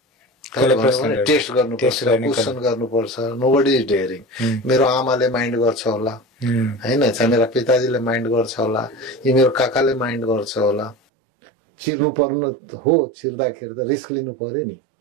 टेस्ट गर्नुपर्छ, क्वेसन गर्नुपर्छ। Nobody is daring. मेरो आमाले माइन्ड गर्छ होला होइन, चाहे मेरा पिताजीले माइन्ड गर्छ होला, यी मेरो काकाले माइन्ड गर्छ होला। चिर्नु पर्नु हो, चिर्दाखेरि त रिस्क लिनु पर्यो नि।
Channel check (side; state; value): left; drops out; at 11.0 s